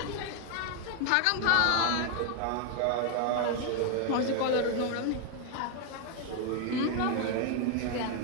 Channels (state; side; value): different; both; correlation 0.00